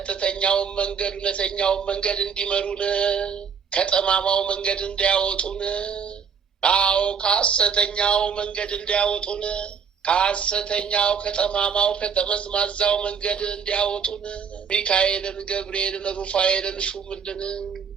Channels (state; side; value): quieter; left; 6.6 dB